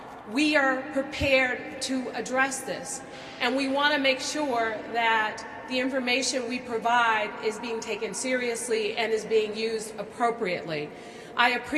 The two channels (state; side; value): identical; both; correlation 1.00